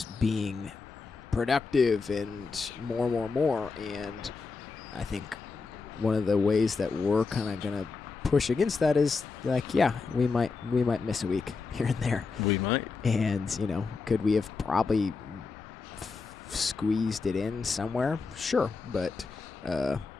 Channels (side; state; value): right; quieter; 4.5 dB